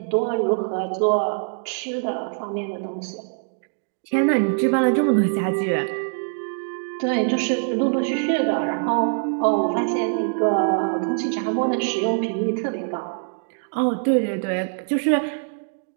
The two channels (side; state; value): left; silent; 63 dB below the other